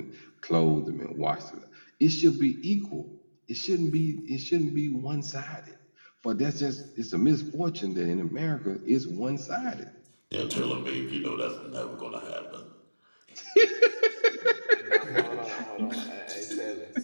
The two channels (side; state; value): both; inverted; correlation -1.00